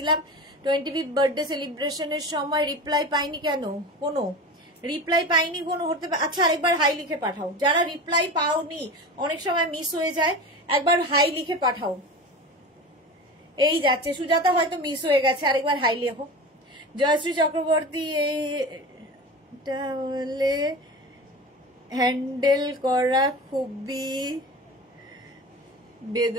25th বার্থডে সেলিব্রেশনের সময়, রিপ্লাই পাইনি কেন? কোনো রিপ্লাই পাইনি কোনো হতে পারে। আচ্ছা, আরেকবার হাই লিখে পাঠাও, যারা রিপ্লাই পাওনি, অনেক সময় মিস হয়ে যায়, একবার হাই লিখে পাঠাও। এই যাচ্ছে, সুজাতা হয়তো মিস হয়ে গেছে, আরেকবার হাই লেখো। জয়শ্রী চক্রবর্তী, এইটা বলে হ্যান্ডেল করা খুবই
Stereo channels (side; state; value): both; normal; correlation 0.31